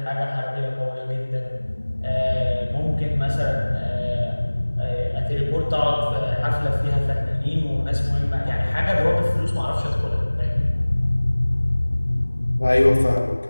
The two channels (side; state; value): both; inverted; correlation -1.00